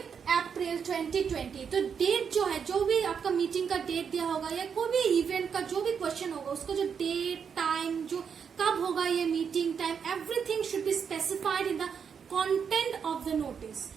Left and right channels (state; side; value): quieter; left; 6.8 dB